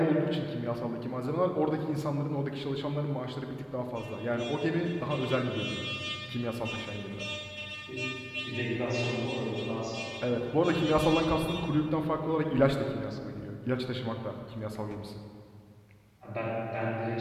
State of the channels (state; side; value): identical; both; correlation 1.00